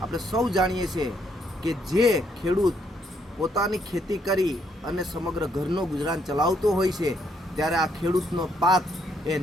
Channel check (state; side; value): normal; both; correlation 0.72